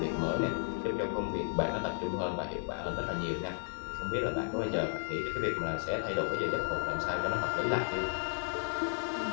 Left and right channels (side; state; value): right; silent; 55 dB below the other